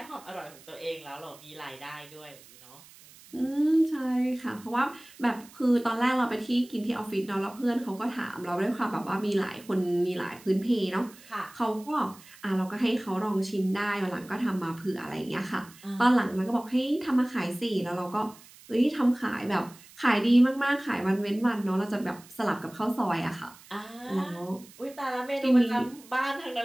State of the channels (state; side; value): noise; right; hiss, 22 dB below the sound